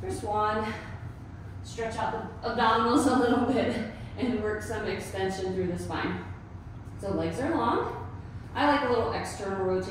one, stretch out the abdominals a little bit and work some extension through the spine. So legs are long. I like a little external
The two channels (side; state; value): both; identical; correlation 1.00